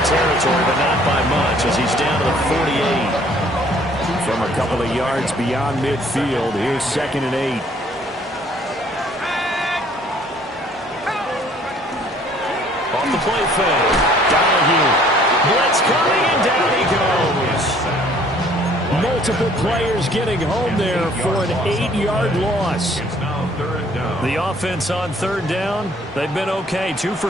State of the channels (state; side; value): normal; both; correlation 0.59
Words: territory, but not by much as he's down to the 48. From a couple of yards beyond midfield, here's 2nd and 8. Off the play fake. Donahue. Blitz coming, and down he goes. Multiple players getting home there for an 8-yard loss. It's now 3rd down. The offense on 3rd down, they've been okay. 2